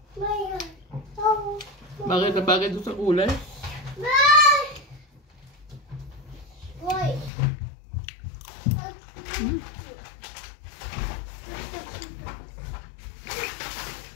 Bagay na bagay doon sa kulay.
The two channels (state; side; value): drops out; right; at 7.3 s